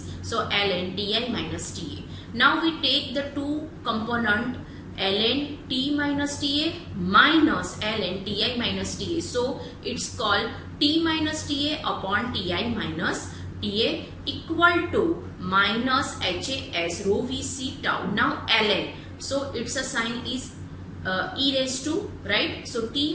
So ln Ti minus TA. Now we take the two component ln T minus TA minus ln Ti minus TA. So it's called T minus TA upon Ti minus TA equal to minus HAS rho Vc tau. Now ln, so its a sign is e raised to, right? So T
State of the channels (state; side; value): identical; both; correlation 1.00